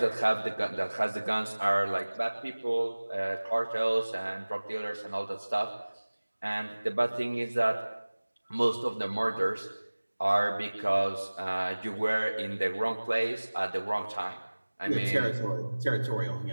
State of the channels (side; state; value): both; inverted; correlation -1.00